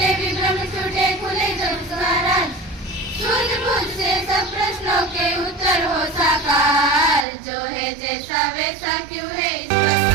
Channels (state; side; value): drops out; left; at 7.2 s